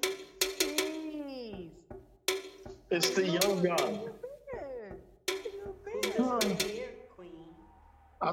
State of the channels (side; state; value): both; identical; correlation 1.00